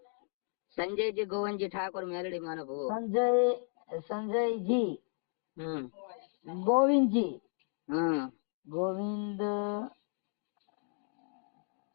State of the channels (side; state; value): right; silent; 55 dB below the other